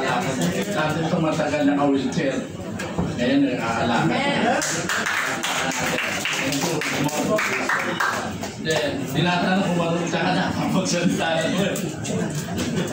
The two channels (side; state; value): both; identical; correlation 1.00